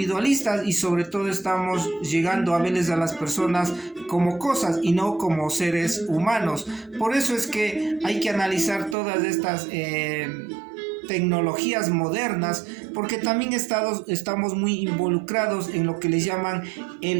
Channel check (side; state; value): left; drops out; at 9.0 s